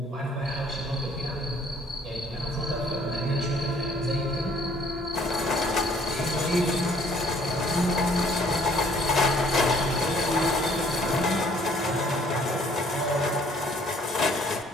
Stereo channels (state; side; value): normal; both; correlation 0.60